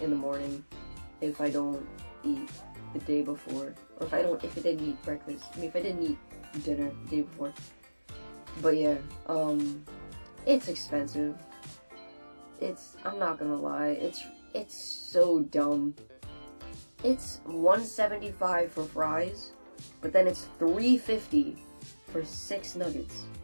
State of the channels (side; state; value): both; inverted; correlation -1.00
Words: in the morning, if I don't eat the day before, or if I didn't eat breakfast. I mean, if I didn't eat dinner the day before. But yeah, it's expensive. I'm not gonna lie, it's so dumb. It's $1.75 for fries, but then it's $3.50 for 6 nuggets.